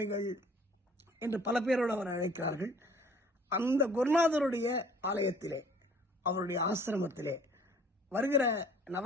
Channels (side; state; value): both; normal; correlation 0.54